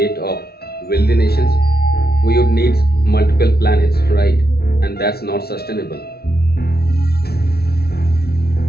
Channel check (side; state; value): right; late; 0.45 ms